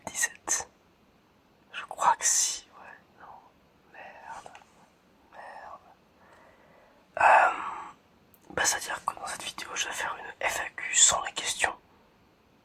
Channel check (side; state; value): both; identical; correlation 1.00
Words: Je crois que si, ouais, non, merde, merde. C'est-à-dire que dans cette vidéo, je vais faire une FAQ sans les questions.